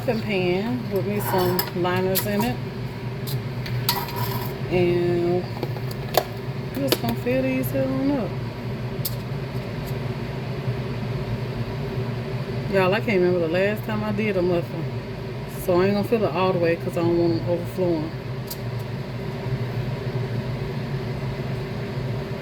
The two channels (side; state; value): both; identical; correlation 1.00